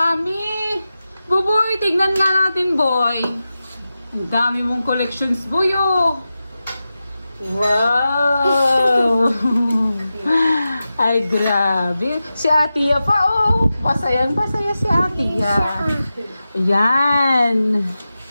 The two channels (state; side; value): inverted; both; correlation -0.93